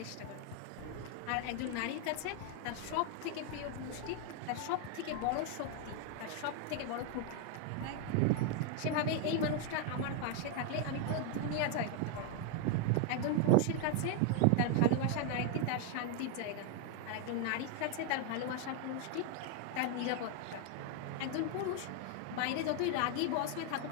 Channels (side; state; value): both; different; correlation 0.00